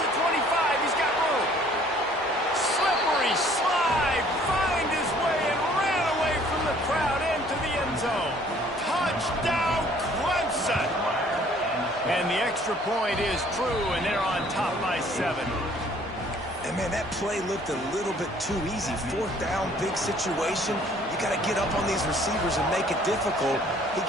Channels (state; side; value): normal; both; correlation 0.57